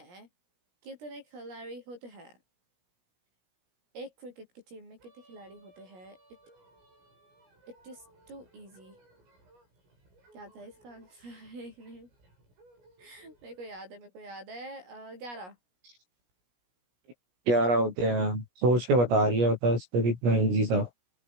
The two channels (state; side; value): late; left; 17 ms